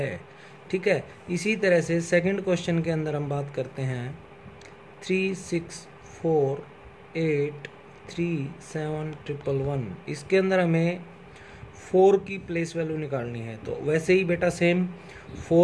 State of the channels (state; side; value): identical; both; correlation 1.00